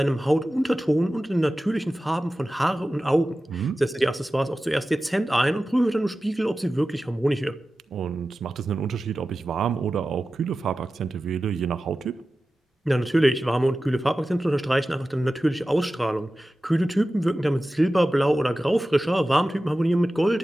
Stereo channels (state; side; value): normal; both; correlation 0.94